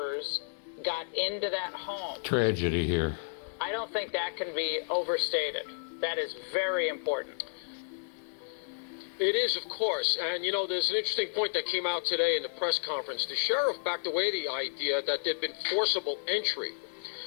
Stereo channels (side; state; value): right; silent; digital silence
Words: got into that home. Tragedy here. I don't think that can be overstated. That is very important. It is, of course, and there's an interesting point that came out today in the press conference. The sheriff backed away the idea that there'd been forcible entry,